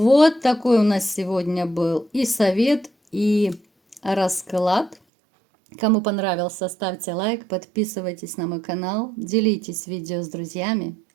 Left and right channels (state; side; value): drops out; left; at 5.0 s